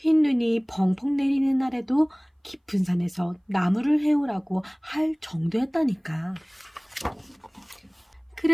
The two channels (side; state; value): both; identical; correlation 1.00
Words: 눈이 펑펑 내리는 날에도 깊은 산에서 나무를 해오라고 할 정도였다니까.